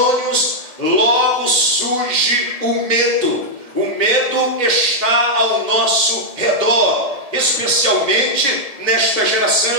logo surge o medo. O medo está ao nosso redor, especialmente nesta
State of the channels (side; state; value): left; late; 1.7 ms